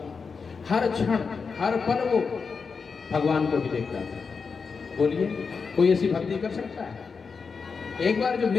हर क्षण हर पल वो भगवान को भी देखता था। बोलिए कोई ऐसी भक्ति कर सकता है? एक बार जो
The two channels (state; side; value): quieter; right; 5.2 dB